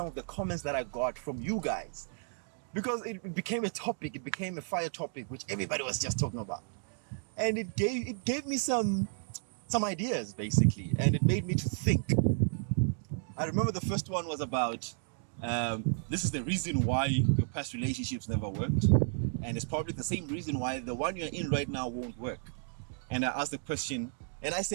of the comments that I got from you guys. Because it became a topic. It became a fire topic, which everybody was just talking about. And it gave me some ideas, basically. And it made me to think. I remember the first one was about, this is the reason why your past relationships never worked. And it's probably the same reason why the one you're in right now won't work. And I asked the question, and I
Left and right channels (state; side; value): silent; left; digital silence